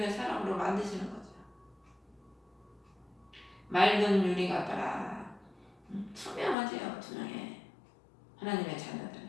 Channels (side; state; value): right; drops out; at 6.6 s